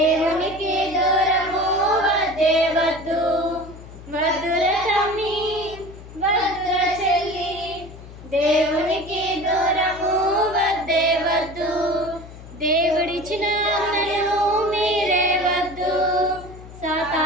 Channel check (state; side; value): noise; left; hum, 16 dB below the sound